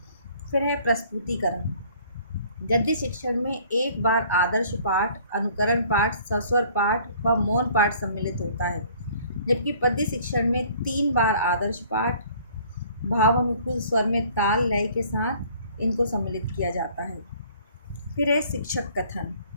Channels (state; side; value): inverted; both; correlation -0.55